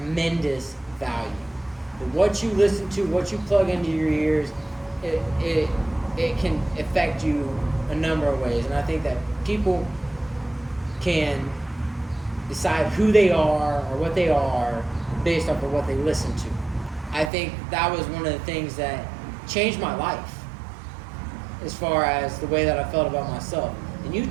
value. What you listen to, what you plug into your ears, it can affect you a number of ways. And I think that people can decide who they are or what they are based off of what they listen to. I think that was one of the things that changed my life as far as the way that I felt about myself. And you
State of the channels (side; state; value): left; drops out; at 17.3 s